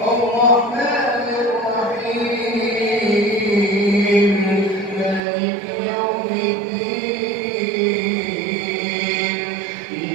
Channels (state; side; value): drops out; left; at 5.2 s